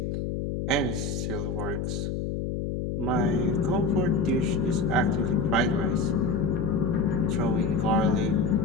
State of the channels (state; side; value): noise; left; hum, 3 dB below the sound